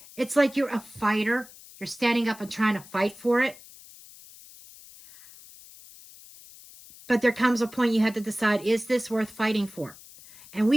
like you're a fighter. You're standing up and trying to fight for it. But there comes a point you have to decide, is this worth fighting for? And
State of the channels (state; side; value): noise; left; hiss, 20 dB below the sound